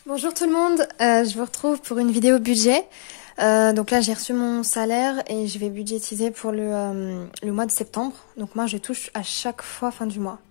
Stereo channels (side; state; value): right; silent; 64 dB below the other